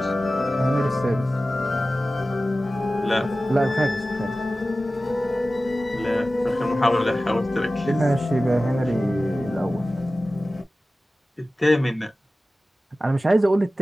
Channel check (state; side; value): normal; both; correlation 0.96